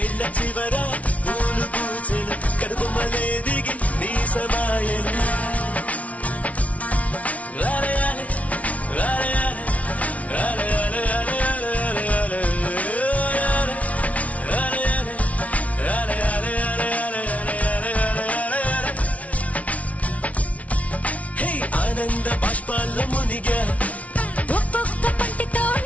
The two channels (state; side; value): late; right; 0.067 ms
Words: చివర పూలు పూచెను కనుబొమ్మలే దిగి నీ సమాయను ఆనంద బాష్పాల్లో మునిగా ఒక్కొక్క పంటితో